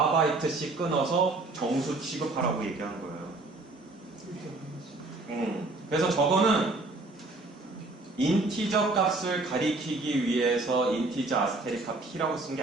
끊어서 정수 취급하라고 얘기한 거예요. 그래서 저거는 인티저 값을 가리키기 위해서 인티저 아스테리카 P라고 쓴 게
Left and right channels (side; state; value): left; quieter; 3.2 dB